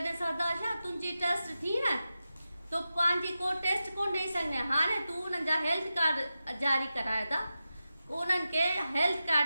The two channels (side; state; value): both; inverted; correlation -0.92